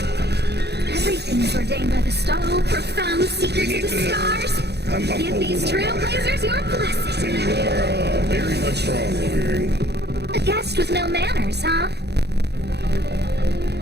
Everything's ordained by the star. Profound secrets of the stars. Give these trailblazers your blessing. You are very much strong over here. A guest with no manners, huh?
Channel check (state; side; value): late; left; 0.48 ms